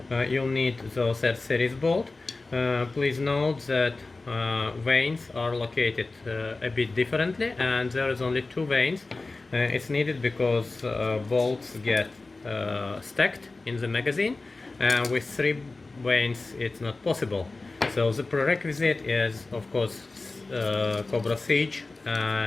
You'll need those R series bolt. Please note that vanes are located a bit differently, and there is only 2 vanes. It's needed because bolts get stacked in the magazine, and with 3 vanes it's not possible. So the prerequisite is, of course, Cobra Siege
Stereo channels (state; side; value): quieter; right; 3.4 dB